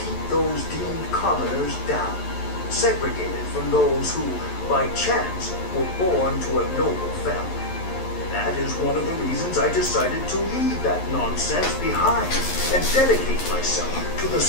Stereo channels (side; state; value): right; late; 11 ms